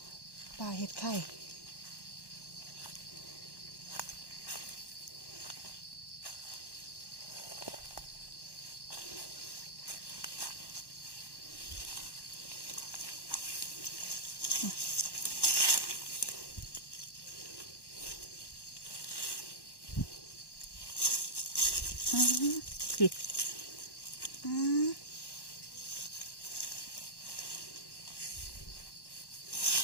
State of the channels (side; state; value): right; late; 1.1 ms